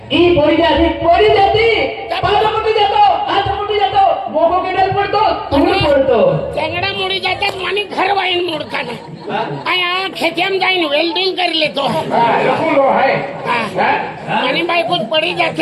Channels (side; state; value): both; identical; correlation 1.00